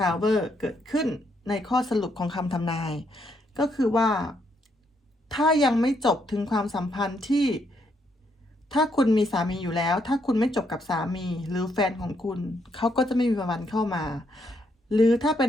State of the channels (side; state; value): both; normal; correlation 0.75